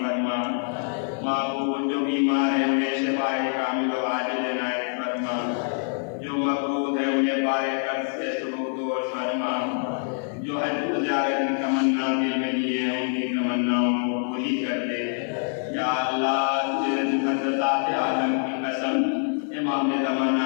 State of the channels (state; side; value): silent; right; 61 dB below the other